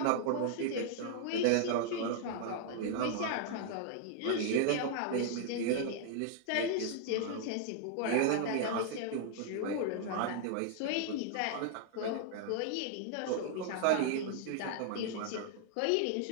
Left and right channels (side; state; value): both; different; correlation -0.01